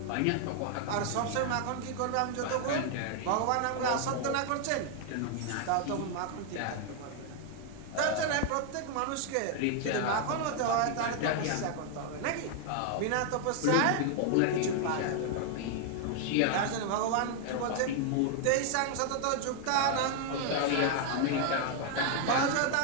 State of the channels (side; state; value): both; different; correlation 0.00